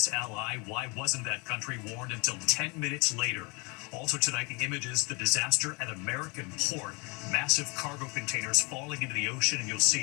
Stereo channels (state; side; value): quieter; right; 29.8 dB